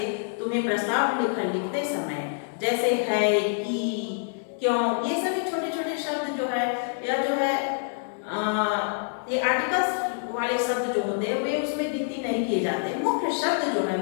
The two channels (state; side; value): silent; right; digital silence